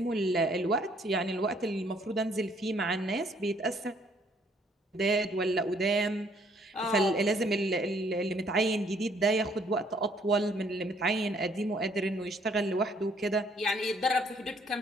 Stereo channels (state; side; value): normal; both; correlation 0.64